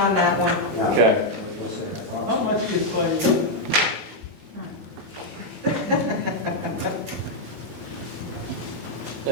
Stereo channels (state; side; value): late; left; 14 ms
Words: that one. Okay. How much is by you?